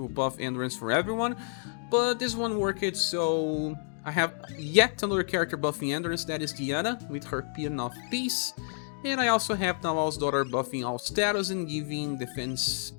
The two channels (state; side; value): silent; right; 58 dB below the other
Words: buff endurance for everyone. But this one worked, so I have yet another character buffing endurance, that is Diana, with her Pean of Peace. And I also have Narwhal's daughter buffing all status and giving defense